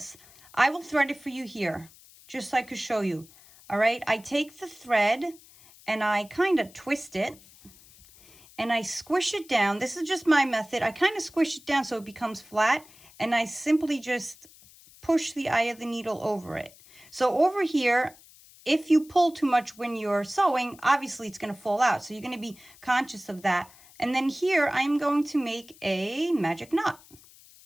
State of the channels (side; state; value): left; noise; hiss, 24 dB below the sound